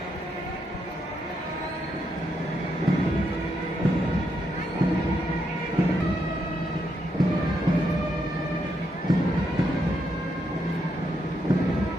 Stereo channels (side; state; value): both; normal; correlation 0.79